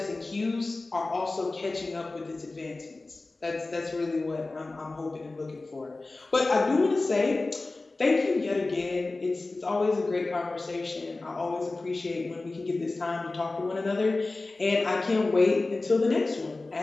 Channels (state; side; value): quieter; right; 3.3 dB